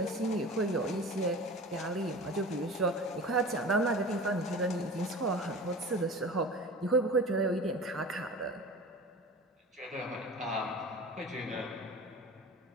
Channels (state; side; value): normal; both; correlation 0.36